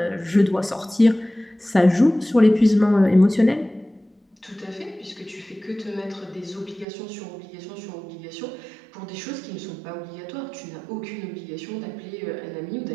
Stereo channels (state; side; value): drops out; left; at 6.9 s